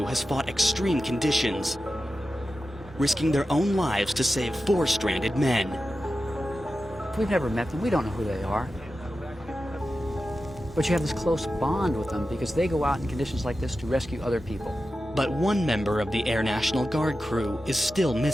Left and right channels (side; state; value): both; normal; correlation 0.92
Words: has fought extreme conditions, risking their own lives to save 4 stranded men. We've never met them. We don't know who they are. But you have this close bond with them because they go out in conditions like this to rescue other people. But one member of the Air National Guard crew is still